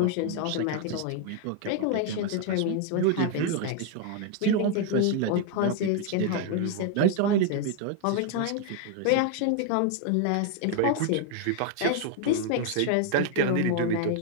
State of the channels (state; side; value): different; both; correlation 0.00